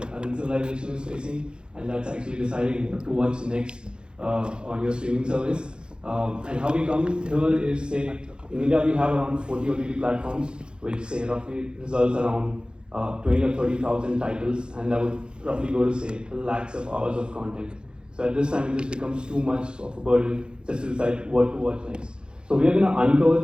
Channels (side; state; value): left; late; 0.050 ms